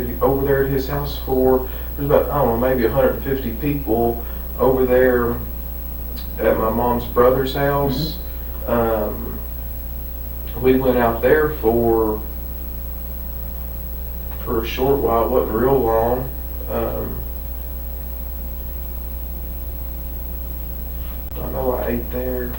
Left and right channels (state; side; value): identical; both; correlation 1.00